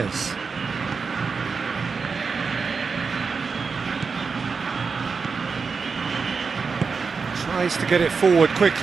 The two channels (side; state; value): left; quieter; 5.1 dB